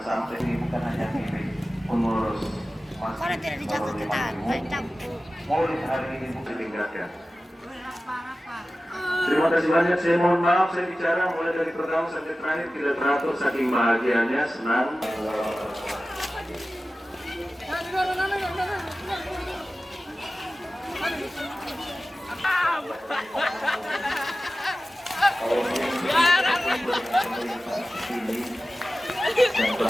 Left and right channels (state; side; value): normal; both; correlation 0.95